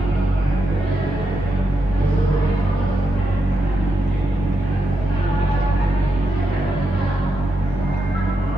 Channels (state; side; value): normal; both; correlation 0.84